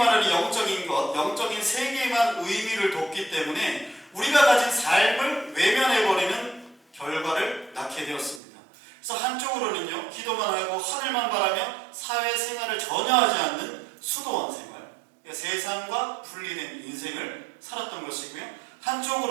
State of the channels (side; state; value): left; drops out; at 8.4 s